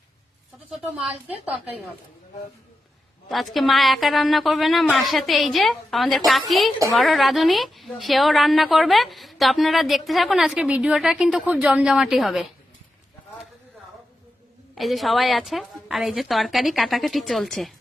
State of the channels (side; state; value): both; normal; correlation 0.89